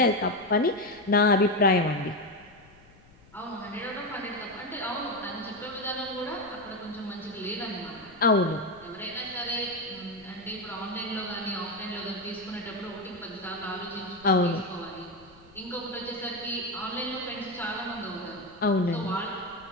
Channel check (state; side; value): noise; left; rumble, 25 dB below the sound